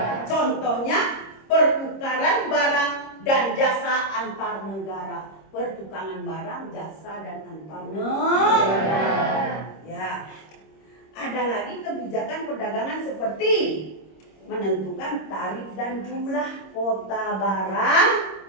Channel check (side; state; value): right; late; 26 ms